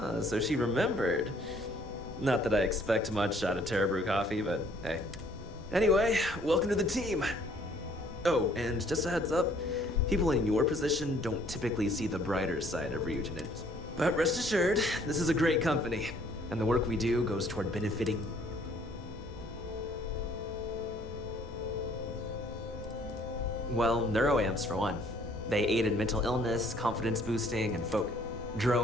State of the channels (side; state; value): both; normal; correlation 0.61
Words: so she remembered. Not that I expect much out of Terra Brew coffee, but hey. Anyway, welcome to the team. Oh, and just a heads up, people in your position don't typically see the brighter side of Ryujin. But rest assured, this is a great company, and the work we do goes toward benefiting. Well, neuroamps for one. They aid in mental illness, confidence boosting, and focus.